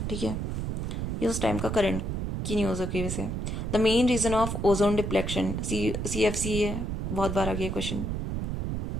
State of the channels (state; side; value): noise; right; rumble, 2 dB below the sound